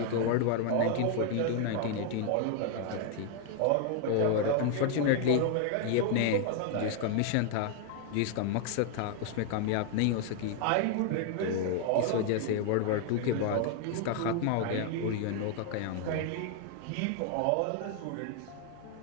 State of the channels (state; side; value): different; both; correlation 0.00